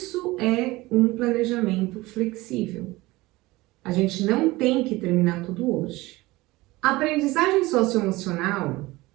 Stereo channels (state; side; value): quieter; left; 20.2 dB